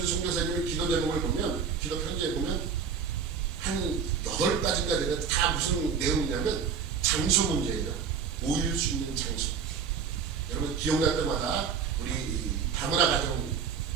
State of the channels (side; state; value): left; quieter; 6.5 dB